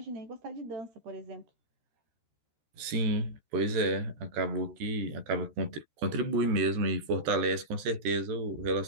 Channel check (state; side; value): late; left; 13 ms